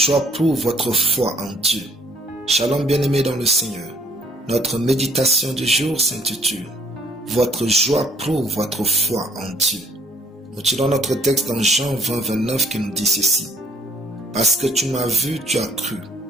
prouve votre foi en Dieu. Shalom bien-aimés dans le Seigneur. Notre méditation du jour s'intitule « Votre joie prouve votre foi en Dieu ». Nous tirons notre texte dans Jean 20, 29 qui nous dit ceci. « Parce que tu m'as vu, tu as cru.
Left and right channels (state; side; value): normal; both; correlation 0.62